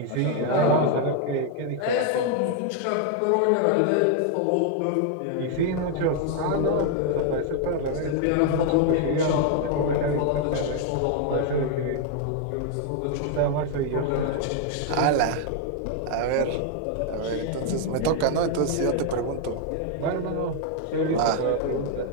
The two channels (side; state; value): both; different; correlation 0.00